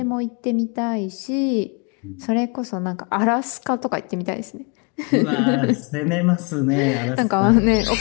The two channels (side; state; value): right; quieter; 33.6 dB